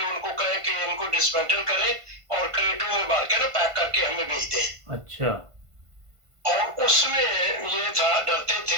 उनको कहें कि इनको डिसमेंटल करें और क्रेटों में भर के ना पैक करके हमें भेज दें। अच्छा। और उसमें ये था, डरते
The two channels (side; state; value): left; late; 1.5 ms